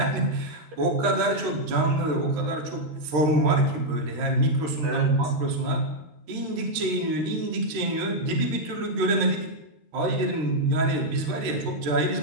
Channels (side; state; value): left; late; 13 ms